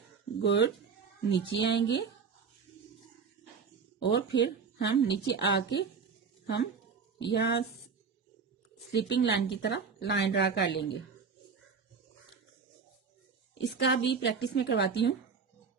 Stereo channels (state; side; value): quieter; left; 5.6 dB